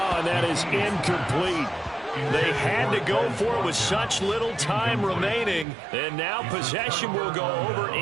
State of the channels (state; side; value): drops out; left; at 5.7 s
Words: and that is incomplete. They had to go for it with such little time remaining. And now possession will go over